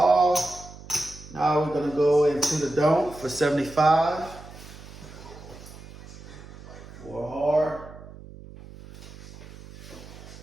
Now we're going to go into the don't for 75. 4 hard.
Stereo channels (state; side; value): noise; right; hum, 17 dB below the sound